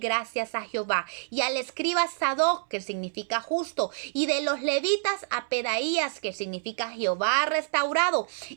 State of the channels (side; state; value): left; silent; 60 dB below the other